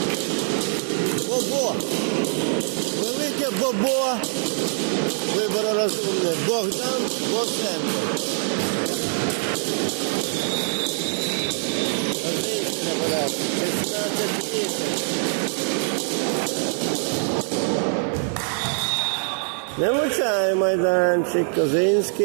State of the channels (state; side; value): silent; left; 63 dB below the other